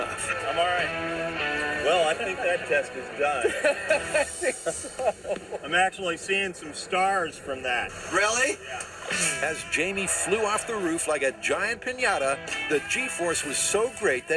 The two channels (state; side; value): identical; both; correlation 1.00